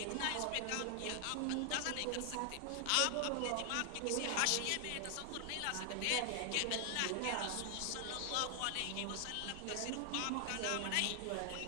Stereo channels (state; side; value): different; both; correlation 0.00